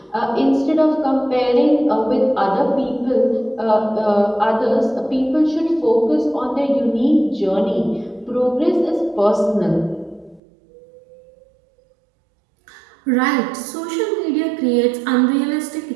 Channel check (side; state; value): left; drops out; at 10.4 s